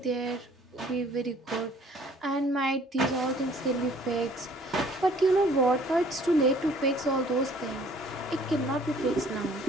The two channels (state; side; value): normal; both; correlation 0.56